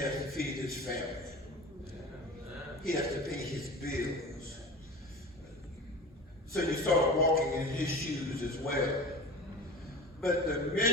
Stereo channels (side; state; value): both; normal; correlation 0.34